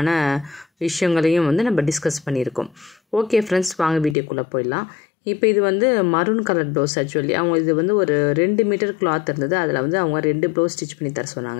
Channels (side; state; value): right; drops out; at 4.2 s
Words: விஷயங்களையும் வந்து நம்ம டிஸ்கஸ் பண்ணியிருக்கோம். ஓகே ஃப்ரெண்ட்ஸ், வாங்க வீடியோக்குள்ளே போயிடலாம். இப்போ இது வந்து மரூன் கலர் ப்ளவுஸ். ஆக்சுவலி அவங்க இது வந்து ஒரு 2 மீட்டர் கிளாத் இருந்தது. அதில் வந்து அவங்க 2 ப்ளவுஸ் ஸ்டிச் பண்ணி தர